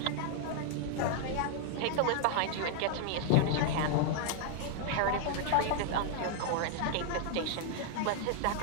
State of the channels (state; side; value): different; both; correlation 0.00